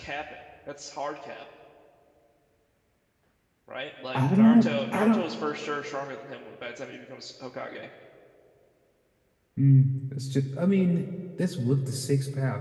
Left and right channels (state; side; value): identical; both; correlation 1.00